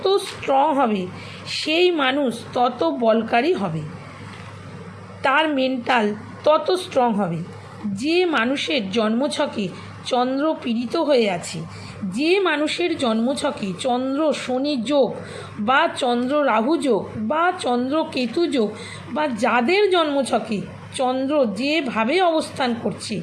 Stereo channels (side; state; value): both; identical; correlation 1.00